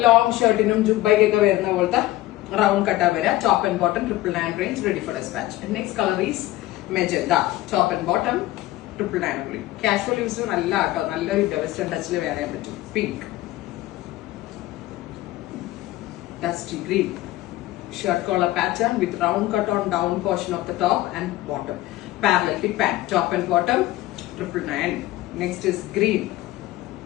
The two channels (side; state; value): right; quieter; 16.7 dB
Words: ലോങ് ഷർട്ടിനും ജുബൈക്കൊക്കെ വരുന്ന പോലത്തെ റൗണ്ട് കട്ടാ വരിക. Top and bottom 999 range, ready for dispatch. Next colour is magenta. Top and bottom 999 only. Casual use നല്ല കേട്ടോ, നല്ലൊരു വെസ്റ്റേൺ ടച്ചിൽ വേറെ ചെയ്യാൻ പറ്റും. Pink, dusty green. Shirt collar pattern with round cut on down portion of the top and bottom. Parallel fit pant. Top and bottom 999. Next is green.